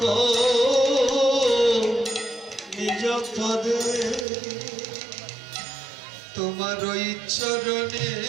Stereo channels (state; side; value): drops out; left; at 4.2 s